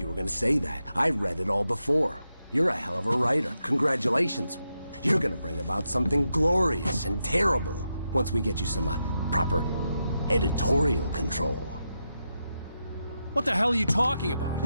were gonna say that. I read it all before. You're a hell of a writer. Congratulations. You're gonna bring about something glorious and terrible once we get you some proper editorial control. What the hell are you talking about?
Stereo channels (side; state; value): both; inverted; correlation -0.86